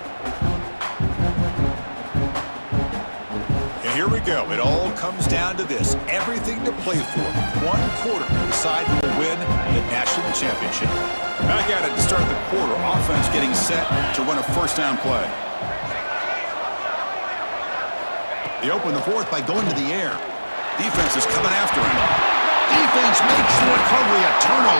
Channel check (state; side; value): inverted; both; correlation -1.00